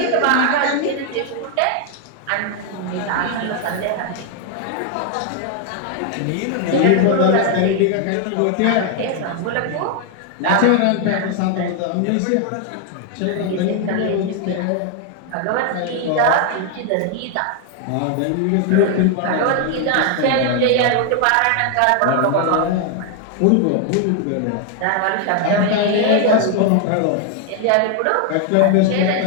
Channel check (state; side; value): different; both; correlation 0.00